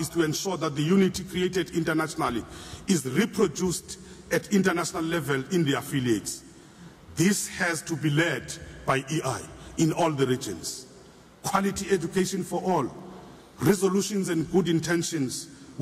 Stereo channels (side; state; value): both; identical; correlation 1.00